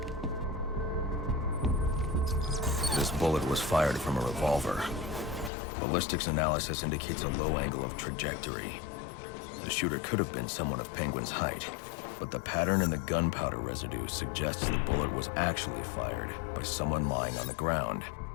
This bullet was fired from a revolver. Ballistics analysis indicates a low angle of trajectory. The shooter could have been someone of Penguin's height, but the pattern in the gunpowder residue suggests the bullet was actually fired by someone lying on the ground.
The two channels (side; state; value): right; drops out; at 5.5 s